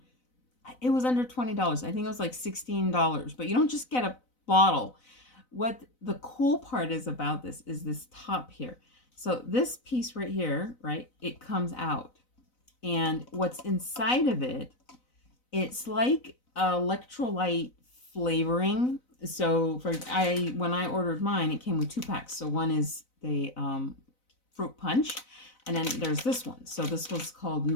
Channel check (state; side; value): late; right; 4.0 ms